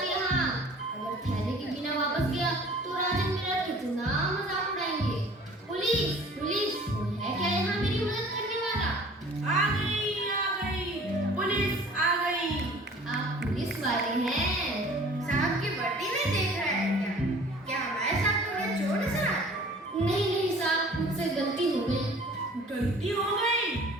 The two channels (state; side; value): normal; both; correlation 0.48